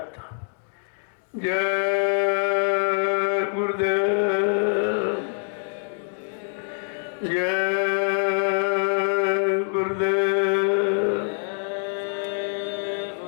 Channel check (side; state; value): right; silent; digital silence